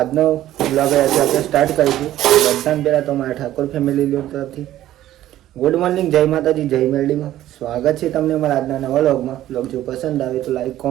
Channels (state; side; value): quieter; left; 13.5 dB